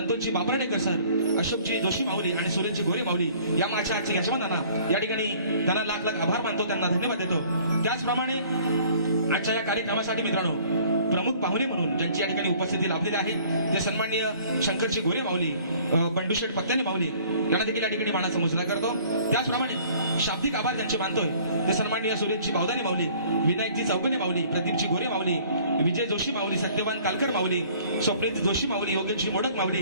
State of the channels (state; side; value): inverted; both; correlation -0.54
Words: बापराडेकर सर, अशोकजी जोशी माऊली आणि सुरेशजी गोरे माऊली या माझ्या आजच्या यजमानांना या ठिकाणी त्यांना लाख लाख आभार मानतो, त्यांना धन्यवाद देतो. त्याचप्रमाणे आजच्या या कार्यक्रमासाठी मित्रांनो प्रमुख पाहुणे म्हणून ज्यांची या ठिकाणी उपस्थिती लाभलेली आहे ते सन्माननीय शंकरजी गोरे माऊली, बंडूशेठ पत्त्याने माऊली यांना देखील या ठिकाणी मानाचा मुजरा करतो. त्याचप्रमाणे शाब्दिक आभार ज्यांचे मानतोय ते सन्माननीय सुरेशजी बावदाने माऊली, विनायकजी चौगने माऊली, प्रदीपजी गोरे माऊली, विजय जोशी माऊली, सत्यवान कालकर माऊली, स्वप्नील जोशी माऊली, योगेशजी मोडक माऊली,